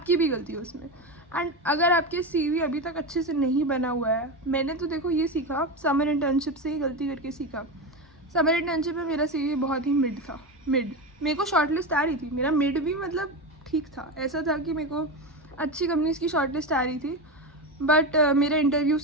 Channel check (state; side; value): normal; both; correlation 0.18